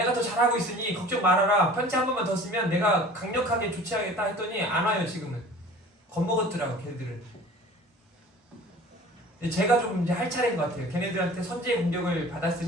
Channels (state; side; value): normal; both; correlation 0.45